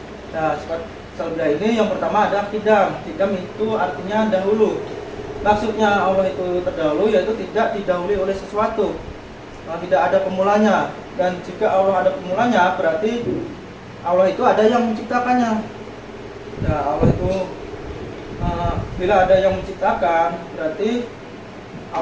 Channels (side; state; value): both; identical; correlation 1.00